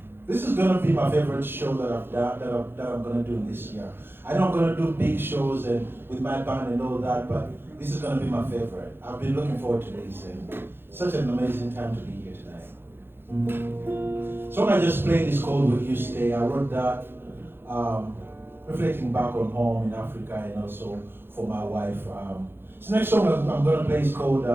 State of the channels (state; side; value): late; left; 0.10 ms